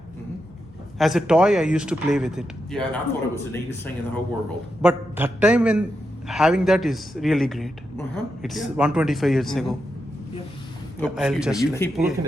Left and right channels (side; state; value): left; noise; hum, 29 dB below the sound